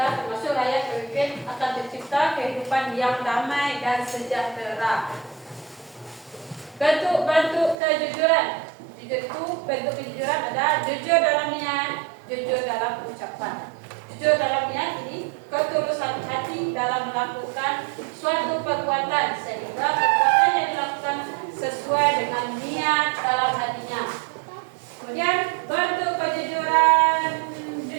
termasuk rakyat pemimpin, akan tercipta kehidupan yang damai dan sejahtera. Bentuk kejujuran. Jujur itu, bentuk kejujuran ada jujur dalam niat, jujur dalam ucapan. Jujur dalam niat ini ketulusan hati dalam melakukan suatu perbuatan sehingga perbuatan yang dilakukan sesuai dengan niat dalam hatinya. Kemudian bentuk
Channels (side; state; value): left; drops out; at 7.8 s